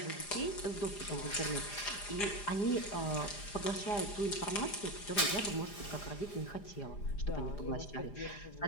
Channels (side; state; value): right; late; 4.9 ms